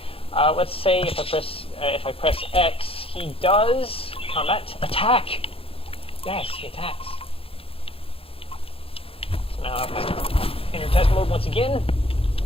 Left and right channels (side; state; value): right; late; 0.27 ms